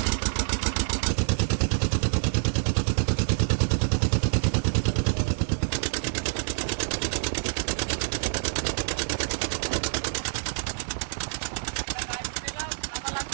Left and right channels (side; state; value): left; silent; digital silence